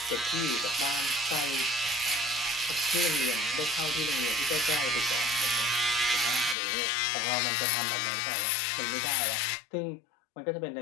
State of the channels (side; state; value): right; drops out; at 6.6 s